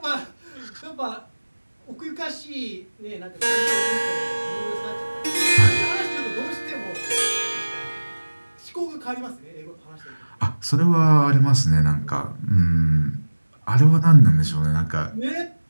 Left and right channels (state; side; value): inverted; both; correlation -1.00